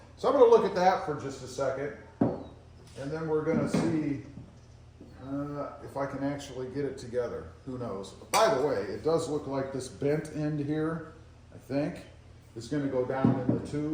So I'm going to look at that for just a second. And then we're going to see if I can actually get it together. Who knows? By the way, it does look like this bent end here, I think, is going to go down in the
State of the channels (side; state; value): both; identical; correlation 1.00